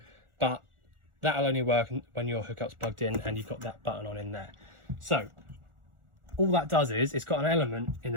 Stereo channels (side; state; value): left; late; 1.4 ms